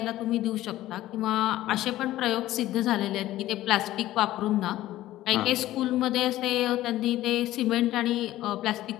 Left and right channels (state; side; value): quieter; right; 15.0 dB